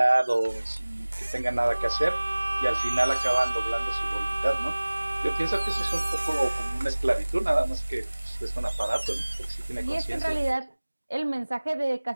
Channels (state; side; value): inverted; both; correlation -1.00